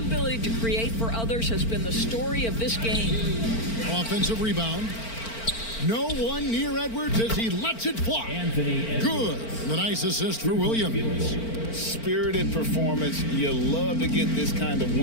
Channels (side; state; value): right; late; 4.4 ms